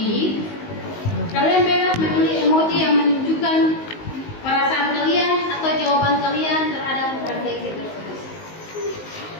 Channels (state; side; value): late; right; 19 ms